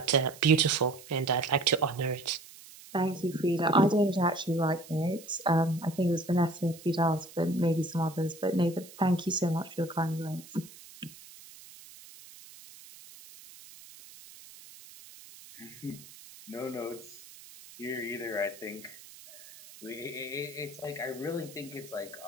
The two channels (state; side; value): noise; right; hiss, 19 dB below the sound